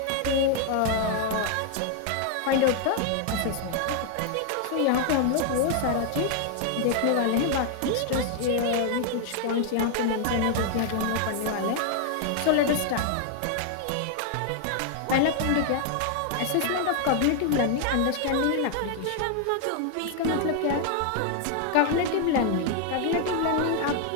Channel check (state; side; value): different; both; correlation 0.00